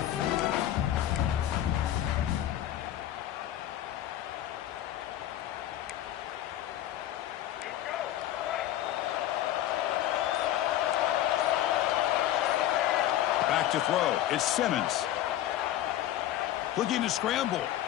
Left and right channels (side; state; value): right; quieter; 12.7 dB